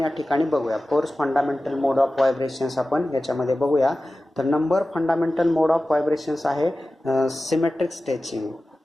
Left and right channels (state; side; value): normal; both; correlation 0.95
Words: ठिकाणी बघूया. 4 फंडामेंटल मोड ऑफ व्हायब्रेशन्स आपण याच्यामध्ये बघूया. तर number fundamental mode of vibrations आहे सिमेट्रिक स्ट्रेचिंग.